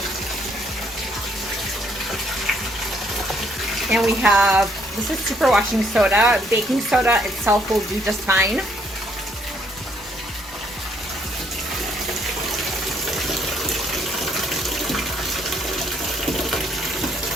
And we have, this is superwashing soda. Baking soda itself will do just fine.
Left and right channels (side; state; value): both; normal; correlation 0.68